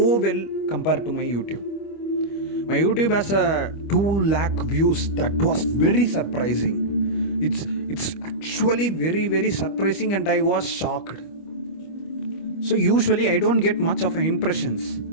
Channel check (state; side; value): late; right; 25 ms